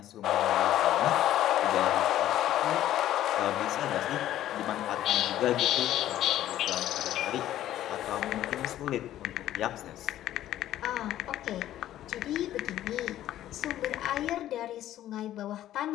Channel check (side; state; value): right; quieter; 12.9 dB